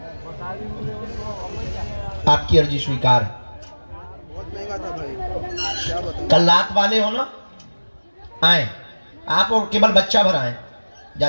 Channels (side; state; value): both; inverted; correlation -1.00